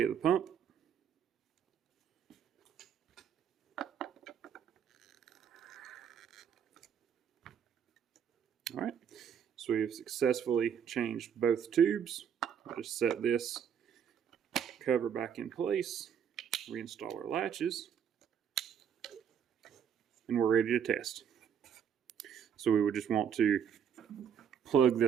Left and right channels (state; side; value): quieter; left; 8.1 dB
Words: of the pump. All right, so we've successfully changed both tubes. I'll just set this cover back in place, reinstall our latches, and we're ready to test. So we would just want to plug